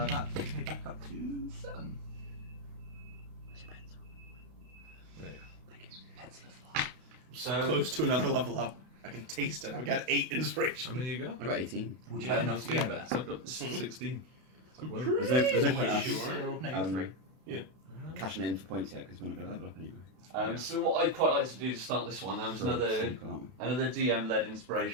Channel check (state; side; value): late; left; 32 ms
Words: takes me back up to 7. There you Pencil of fire. So Close to another level up. I can taste it. I've got 8 go. inspiration. How many you got? I got 18. Would you Yeah, have enough to get better. there? I've got 16. Whoa. There's no point Wait, us sure? No, you're 3. cashing in for points yet because we're not going to level up anyway. So what I'd quite like to do to start this one, was So another super, aren't we? another DM-led